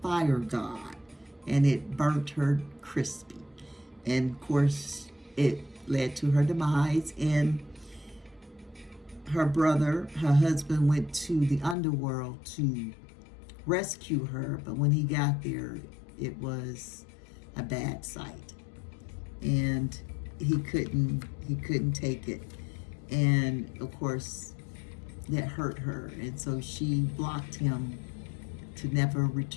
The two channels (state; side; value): drops out; right; at 11.8 s